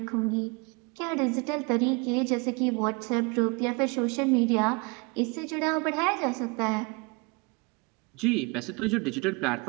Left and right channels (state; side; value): quieter; left; 29.1 dB